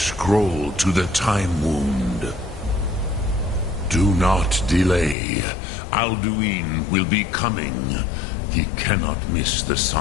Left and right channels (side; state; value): right; drops out; at 5.2 s